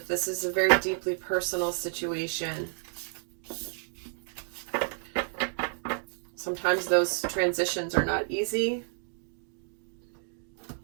this is a very deeply personal situation, sometimes those transitions are not easy.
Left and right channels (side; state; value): left; silent; digital silence